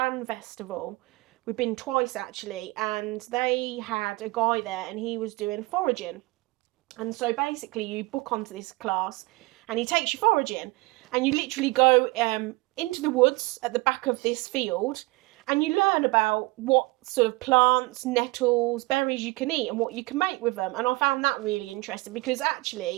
festival. We've been twice, actually, and they had a guy there and he was doing foraging. And so basically you book onto this class and he takes you foraging, and you literally go into the woods at the back of this field, and you learn about what sort of plants, nettles, berries you can eat and what you can make with them. And I found that really interesting, because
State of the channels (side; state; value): left; quieter; 23.8 dB